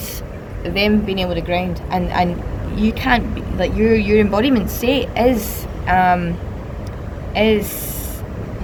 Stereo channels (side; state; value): both; identical; correlation 1.00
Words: them being able to ground, and you can't be, like your embodiment state is